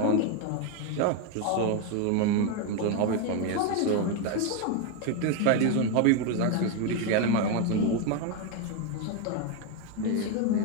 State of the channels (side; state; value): both; different; correlation 0.02